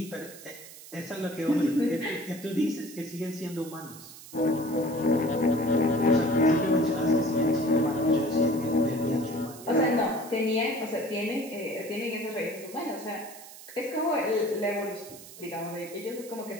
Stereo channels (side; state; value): right; noise; hiss, 17 dB below the sound